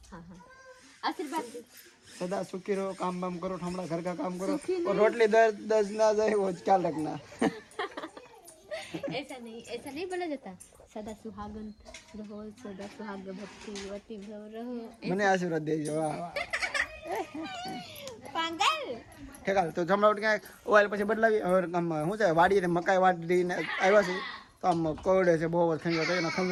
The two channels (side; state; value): both; identical; correlation 1.00